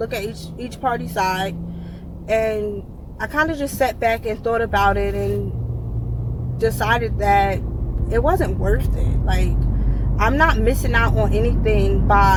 at each party side. And I kind of just sat back and thought about it and decided that it wasn't worth it. Like, I'm not missing out on anything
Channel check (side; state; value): both; identical; correlation 1.00